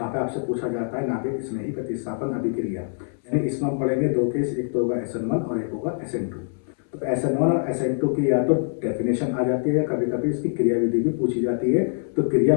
पे आपसे पूछा जाता है नाभिक स्नेही प्रतिस्थापन अभिक्रिया। यानी इसमें हम पढ़ेंगे दो केस, एक तो होगा SN1 और एक होगा SN2। तो SN1 और SN2 की या तो डेफिनेशन आ जाती है या कभी कभी इसकी क्रिया विधि भी पूछी जाती है। तो क्रिया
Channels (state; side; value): silent; right; 61 dB below the other